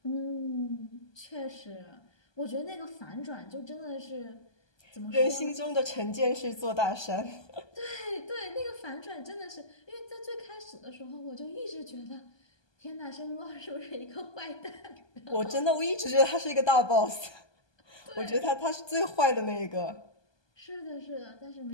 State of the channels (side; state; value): right; late; 1.2 ms